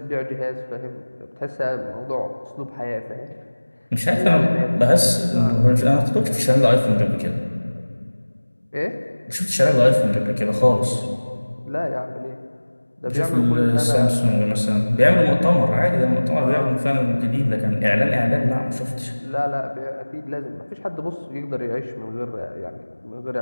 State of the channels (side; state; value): both; inverted; correlation -1.00